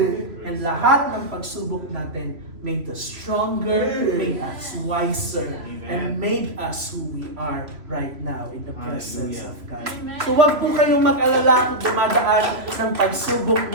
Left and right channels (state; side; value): late; left; 3.0 ms